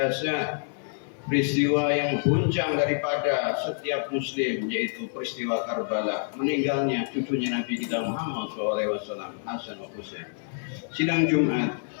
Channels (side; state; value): right; silent; 60 dB below the other